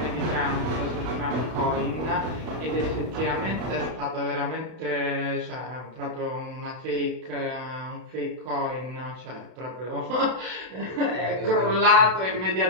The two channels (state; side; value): late; left; 32 ms